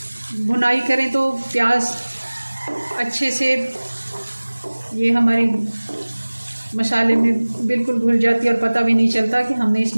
भुनाई करें तो प्याज अच्छे से ये हमारी मसाले में बिल्कुल घुल जाती है और पता भी नहीं चलता कि हमने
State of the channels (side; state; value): both; inverted; correlation -1.00